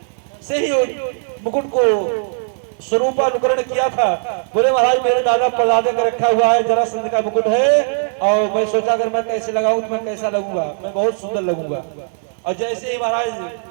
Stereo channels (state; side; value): silent; left; digital silence